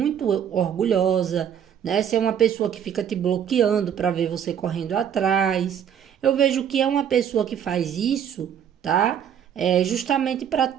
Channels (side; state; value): left; quieter; 8.7 dB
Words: orgulhosa, né? Se é uma pessoa que fica te bloqueando para ver você correndo atrás, eu vejo que é uma pessoa que faz isso, tá? Justamente para